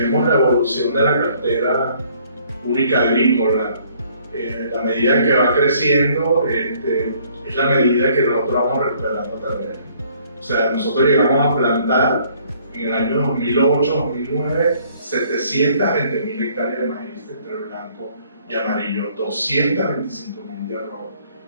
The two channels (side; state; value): both; inverted; correlation -0.61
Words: la evolución de la cartera única agrícola, la medida que va creciendo es la medida que nosotros vamos recuperando terreno. O sea, nosotros llegamos a plantar en el año 2008-2009 720.000 hectáreas de maíz entre blanco y amarillo, 225.000 de arroz,